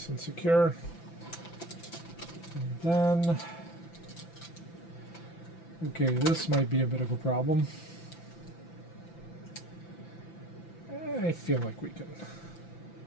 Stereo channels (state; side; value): late; right; 5.9 ms